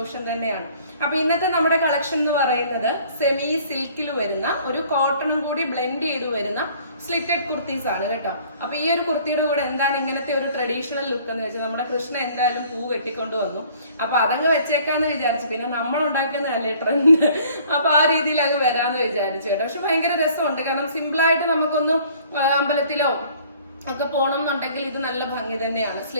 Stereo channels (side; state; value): both; inverted; correlation -0.55